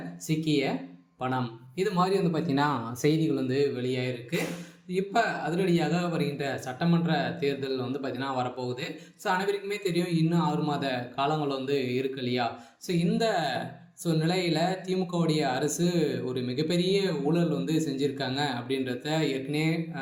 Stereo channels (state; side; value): identical; both; correlation 1.00